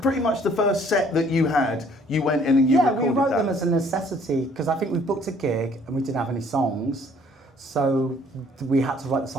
much the first set that you had. You went in and you recorded that. Yeah, we wrote them as a necessity because I think we booked a gig and we didn't have any songs, so we had to write the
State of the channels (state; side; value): normal; both; correlation 0.60